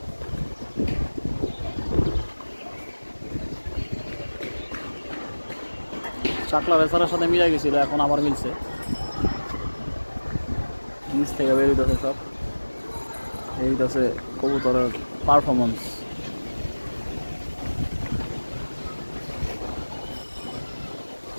চাকলা রেসারের সাথে মিলাই গেছিল, এখন আবার মিলছে। নিচ থেকে বেরোইতেছে সব। এইটাছে কবুতরের পারফরমেন্স।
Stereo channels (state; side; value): inverted; both; correlation -1.00